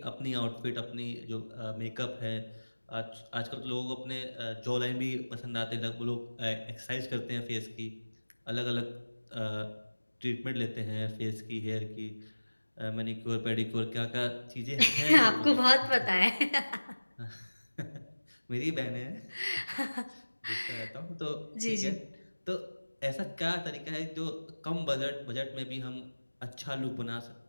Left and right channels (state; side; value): inverted; both; correlation -1.00